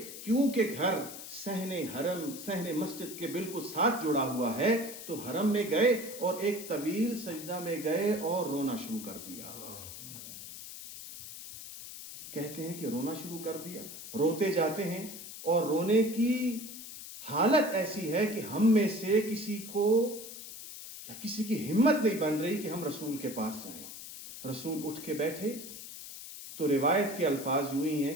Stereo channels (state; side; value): noise; left; hiss, 12 dB below the sound